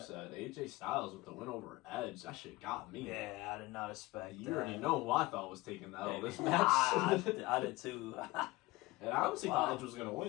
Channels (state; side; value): quieter; right; 20.4 dB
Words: AJ Styles with the win over Edge, that shit got me. Yeah, I did not expect that. You already know who I thought was taking that over this match. I did too. And I honestly thought Edge was going to